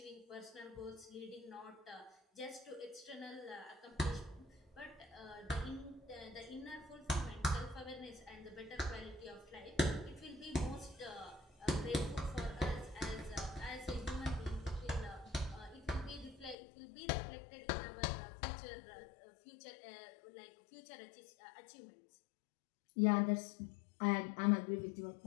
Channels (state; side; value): drops out; right; at 16.6 s